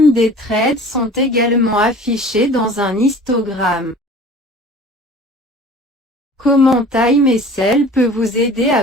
des trades sont également affichés dans un histogramme. Comment Time SL peut vous aider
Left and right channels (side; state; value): both; normal; correlation 0.44